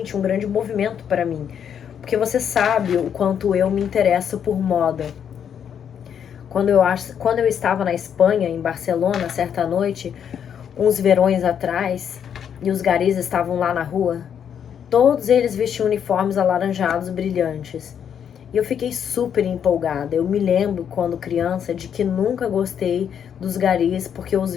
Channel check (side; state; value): right; quieter; 8.3 dB